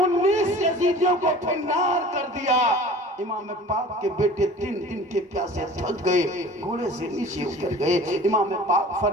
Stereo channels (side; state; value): both; normal; correlation 0.43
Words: यजीदियों को फिन्नार कर दिया, इमाम पाक के बेटे 3 दिन के प्यासे थक गए, घोड़े से नीचे उतर गए। इमाम पाक